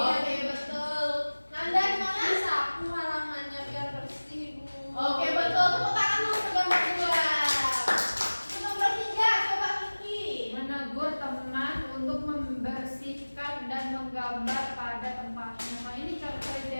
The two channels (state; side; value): inverted; both; correlation -1.00